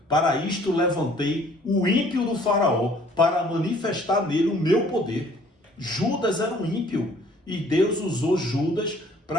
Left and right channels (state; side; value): normal; both; correlation 0.57